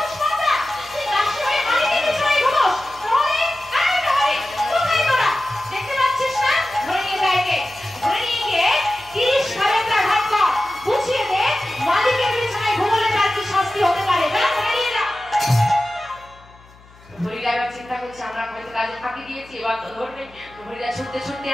দেখতে পাচ্ছিস না? ধরে নিয়ে যায় কে? ধরে নিয়ে গিয়ে 30 সালের ঘাট কর, বুঝিয়ে দে মালিকের বিছানায় ঘুমোলে তার কি শাস্তি হতে পারে। হরিদা এবার চিন্তা করছে আমরা হয়তো কাজে ফাঁকি দিয়েছি, এবার তো ধরবে। হরিদা ছুটতে ছুটতে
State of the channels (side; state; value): left; noise; hum, 25 dB below the sound